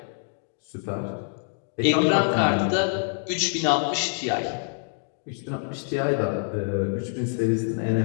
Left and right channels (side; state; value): right; silent; digital silence